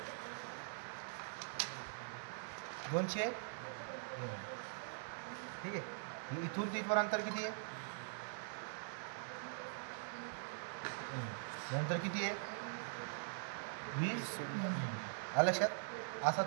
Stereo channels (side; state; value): left; silent; digital silence